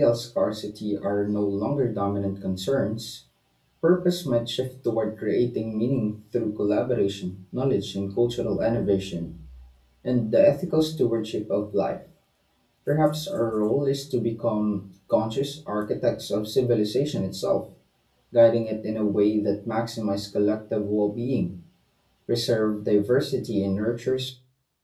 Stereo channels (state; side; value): identical; both; correlation 1.00